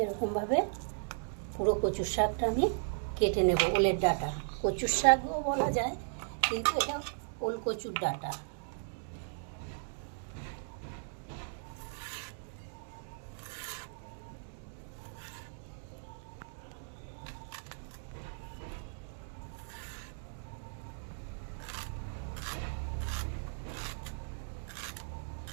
এরকমভাবে পুরো কচুর শাকটা আমি কেটে নেব। ওলের ডাটা কচুর শাকও বলা যায়, কিন্তু এটা ওল কচুর ডাটা।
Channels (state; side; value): silent; left; digital silence